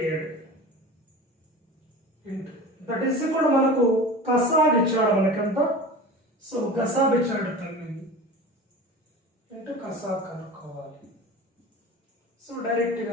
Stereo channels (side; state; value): both; normal; correlation 0.35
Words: ఇంటూ దట్ ఈస్ కూడా మనకు కసాబ్ ఇచ్చాడు మనకంతా. సో గసాబ్ ఇచ్చాడు 9 ఇంటూ కసాబ్ కనుక్కోవాలి. సో